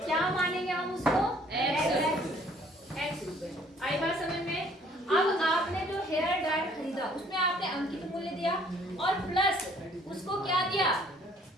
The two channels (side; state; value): both; normal; correlation 0.59